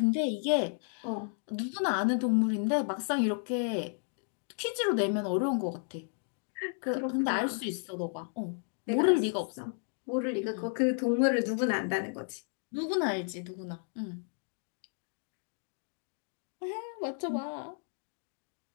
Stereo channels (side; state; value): right; silent; 56 dB below the other